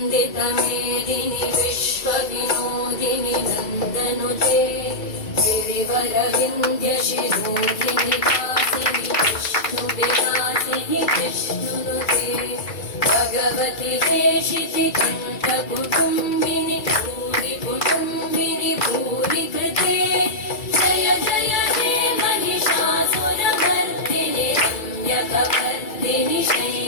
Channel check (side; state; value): right; late; 2.3 ms